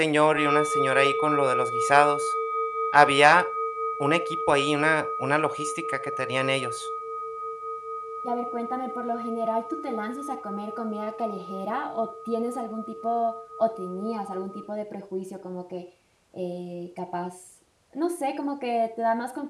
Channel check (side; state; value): both; identical; correlation 1.00